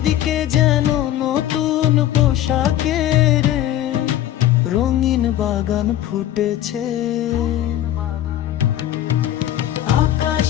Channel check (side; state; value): right; quieter; 12.6 dB